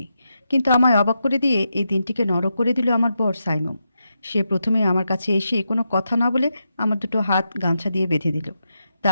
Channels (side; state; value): both; inverted; correlation -0.86